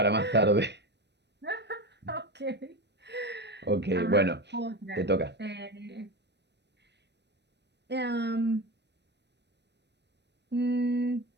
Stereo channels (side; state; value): left; late; 0.50 ms